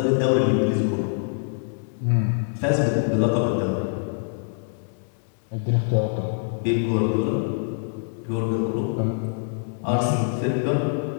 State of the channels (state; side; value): silent; right; digital silence